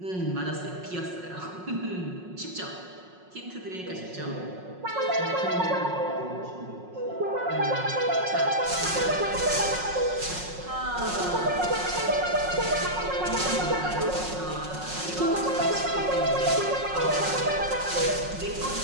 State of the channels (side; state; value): left; late; 5.5 ms